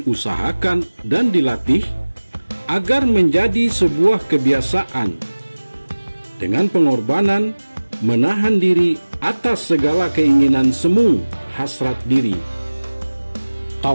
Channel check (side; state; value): both; inverted; correlation -1.00